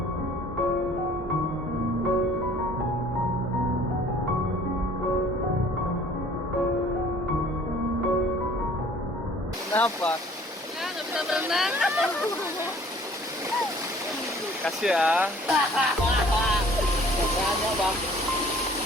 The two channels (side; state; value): both; normal; correlation 0.54